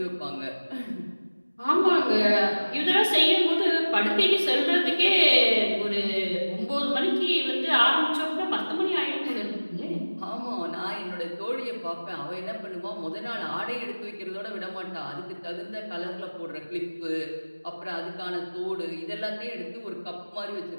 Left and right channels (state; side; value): inverted; both; correlation -1.00